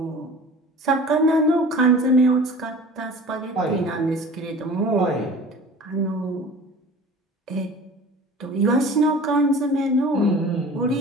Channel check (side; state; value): both; normal; correlation 0.42